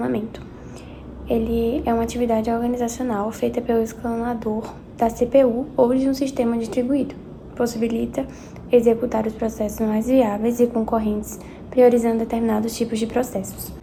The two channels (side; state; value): both; identical; correlation 1.00